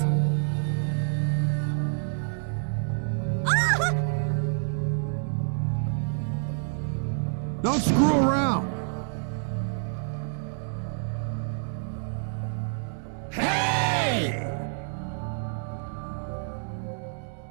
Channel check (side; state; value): left; silent; digital silence